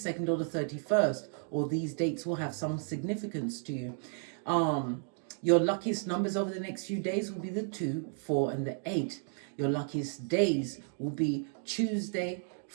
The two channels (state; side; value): silent; left; 56 dB below the other